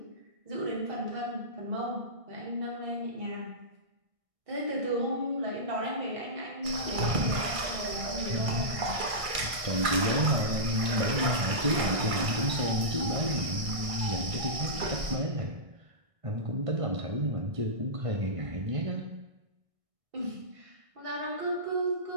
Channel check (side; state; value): left; late; 1.6 ms